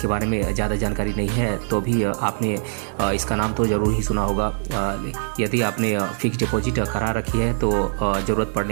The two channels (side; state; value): left; silent; digital silence